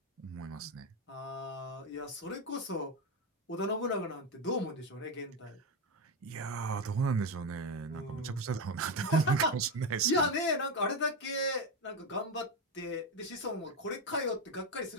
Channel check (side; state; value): both; normal; correlation 0.11